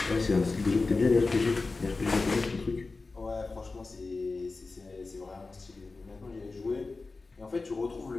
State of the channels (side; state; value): right; quieter; 3.8 dB